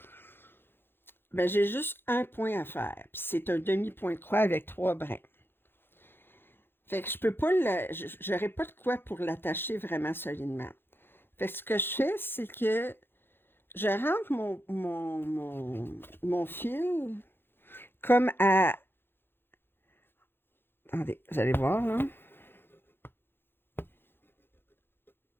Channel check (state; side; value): late; right; 0.10 ms